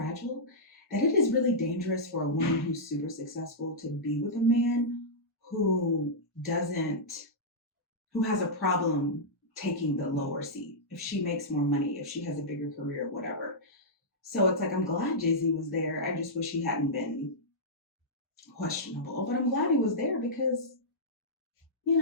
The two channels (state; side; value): normal; both; correlation -0.12